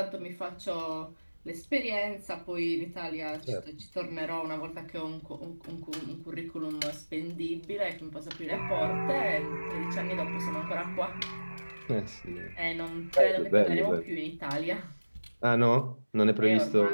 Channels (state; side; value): inverted; both; correlation -1.00